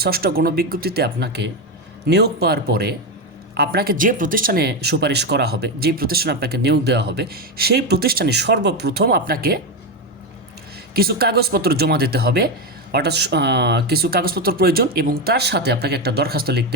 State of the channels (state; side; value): normal; both; correlation 0.11